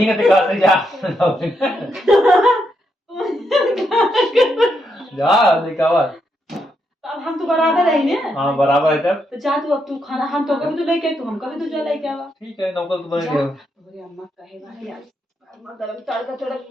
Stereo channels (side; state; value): both; normal; correlation 0.80